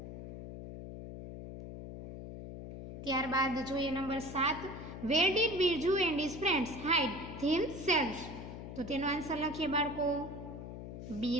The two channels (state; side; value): noise; left; hum, 10 dB below the sound